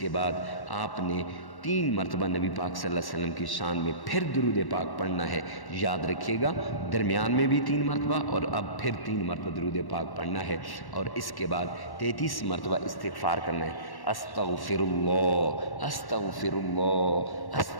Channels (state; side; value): late; right; 1.1 ms